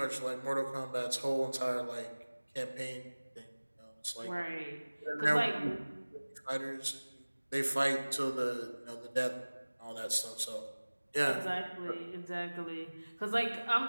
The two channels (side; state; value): both; inverted; correlation -1.00